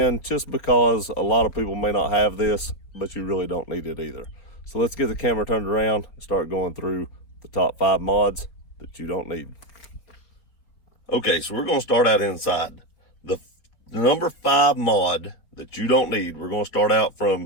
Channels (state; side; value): late; right; 4.1 ms